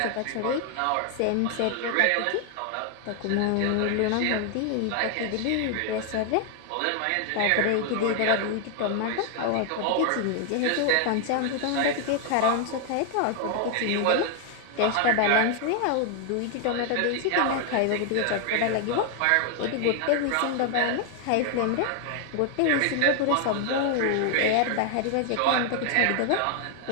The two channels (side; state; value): both; different; correlation 0.00